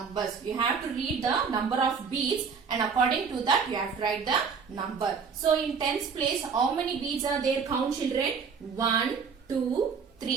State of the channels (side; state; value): left; quieter; 5.9 dB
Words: You have to read the number of beads and according to that you have to write the number. So in tens place, how many beads are there? Count children. 1, 2,